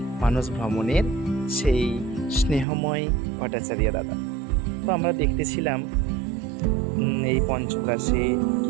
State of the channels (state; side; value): drops out; left; at 2.7 s